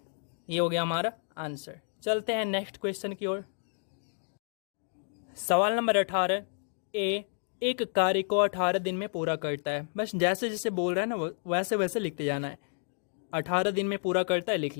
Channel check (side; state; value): right; silent; 57 dB below the other